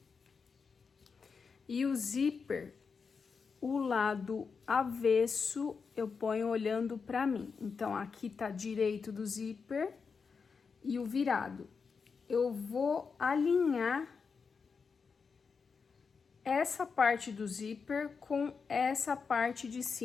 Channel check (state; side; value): quieter; right; 5.4 dB